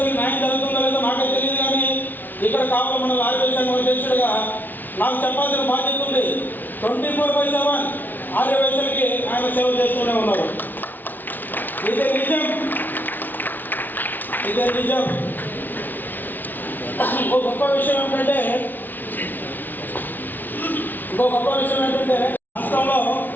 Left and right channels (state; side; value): late; right; 0.086 ms